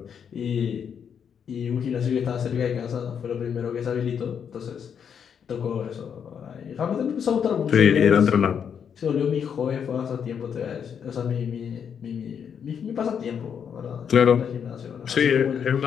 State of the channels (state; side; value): quieter; right; 7.6 dB